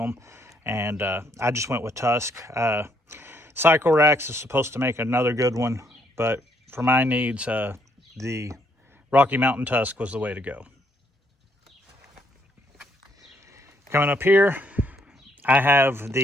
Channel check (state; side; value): normal; both; correlation 0.70